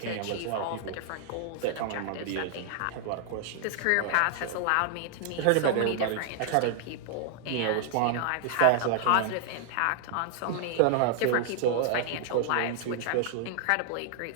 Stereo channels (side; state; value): both; different; correlation 0.00